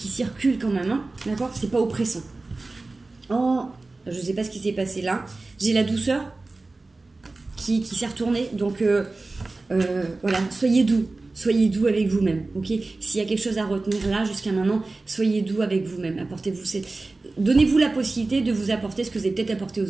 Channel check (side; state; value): left; quieter; 3.4 dB